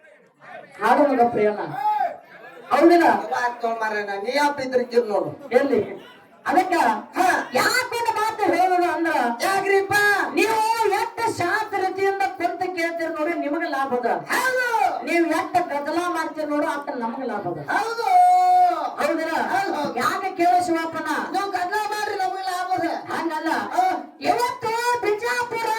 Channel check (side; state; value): both; identical; correlation 1.00